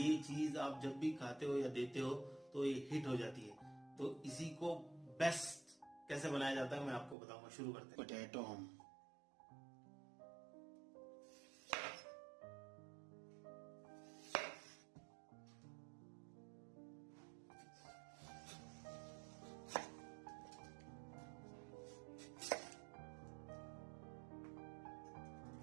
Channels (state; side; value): drops out; left; at 7.2 s